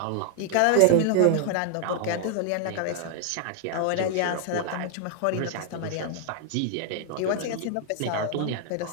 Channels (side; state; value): both; different; correlation 0.00